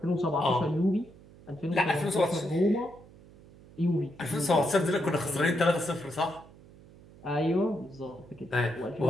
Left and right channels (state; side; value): noise; right; hum, 22 dB below the sound